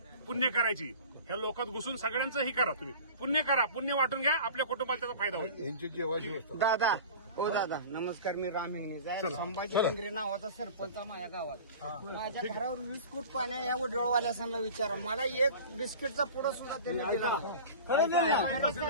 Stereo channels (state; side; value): inverted; both; correlation -0.38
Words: पुण्य करायची. ह्या लोकात घुसून सगळ्यांचं ही करा, तुम्ही पुण्य करा, पुण्य वाटून घ्या, आपल्या कुटुंबाला त्याचा फायदा होईल. दादा दादा नमस्कार. मी राम हिंगणे, संभाजी केंद्रे नावाचा सरपंच माझ्या गावात. माझ्या घरावर 20 फूट पाण्या या वडवळवाल्यासांना विचारा, मला एक बिस्किटचा पुडा सुद्धा त्यांनी दिला.